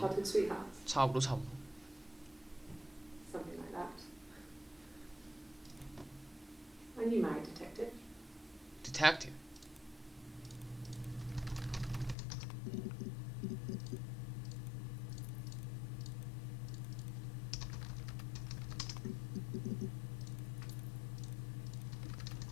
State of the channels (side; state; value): right; drops out; at 12.2 s